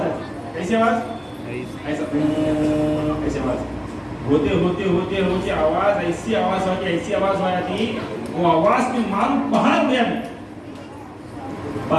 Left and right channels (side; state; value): both; identical; correlation 1.00